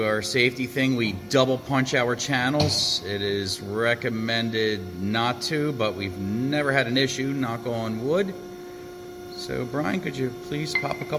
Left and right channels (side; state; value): both; identical; correlation 1.00